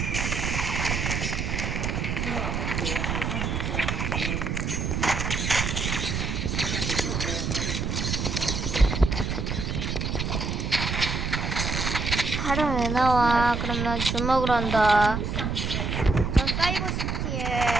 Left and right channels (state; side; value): noise; right; rumble, 1 dB below the sound